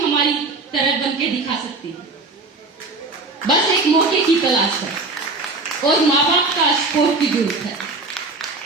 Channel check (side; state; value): left; quieter; 3.5 dB